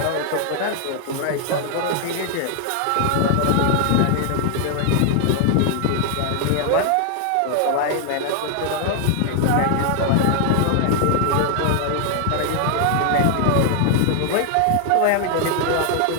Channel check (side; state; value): both; different; correlation 0.00